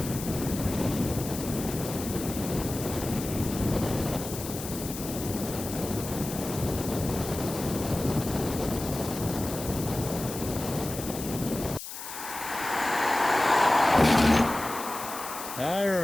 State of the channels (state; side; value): noise; left; hiss, 9 dB below the sound